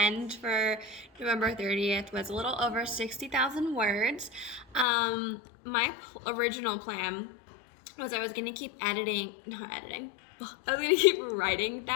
for November 30th was a little over 60,000 words. My original plan was I was going to keep I was going to keep writing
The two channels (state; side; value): drops out; right; at 4.9 s